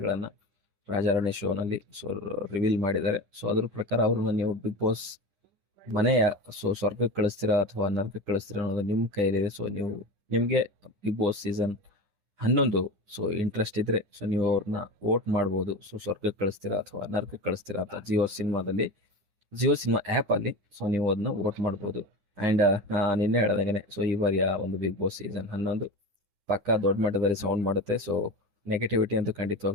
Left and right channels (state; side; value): late; left; 10 ms